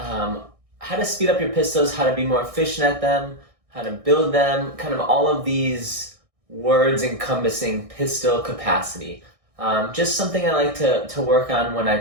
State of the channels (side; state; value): left; late; 1.6 ms